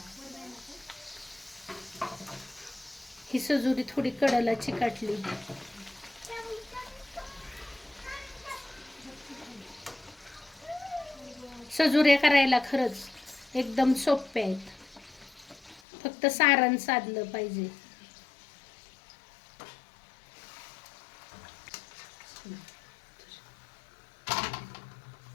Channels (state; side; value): drops out; right; at 15.8 s